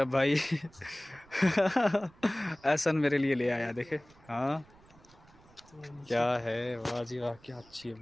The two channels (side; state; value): right; noise; rumble, 27 dB below the sound